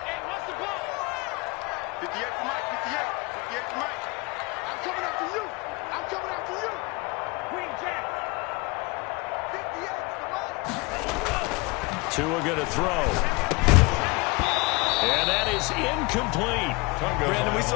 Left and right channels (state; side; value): quieter; right; 26.3 dB